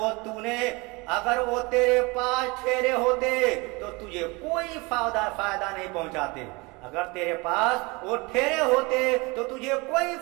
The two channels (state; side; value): quieter; left; 26.1 dB